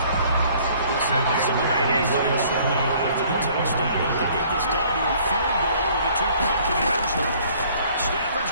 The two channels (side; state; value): both; inverted; correlation -0.57